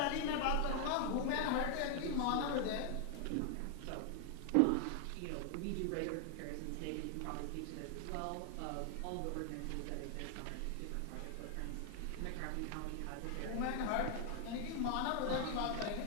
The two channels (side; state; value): both; different; correlation 0.00